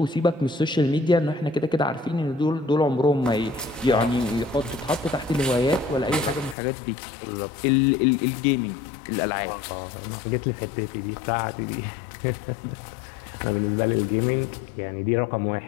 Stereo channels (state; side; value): drops out; right; at 6.6 s